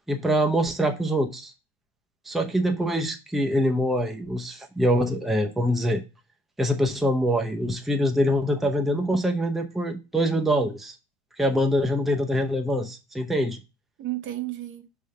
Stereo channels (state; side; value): normal; both; correlation 0.71